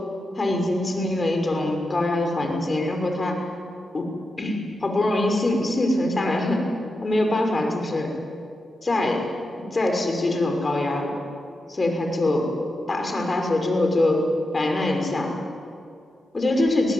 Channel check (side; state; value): both; normal; correlation 0.88